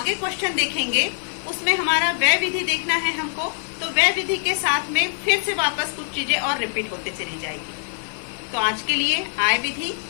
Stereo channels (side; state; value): right; silent; digital silence